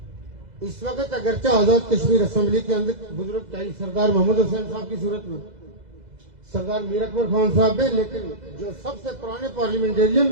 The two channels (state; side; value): late; left; 2.0 ms